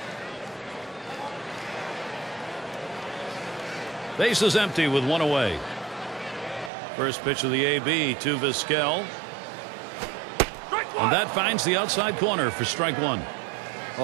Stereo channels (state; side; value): drops out; left; at 6.7 s